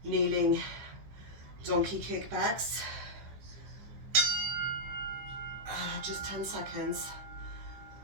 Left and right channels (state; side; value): late; left; 15 ms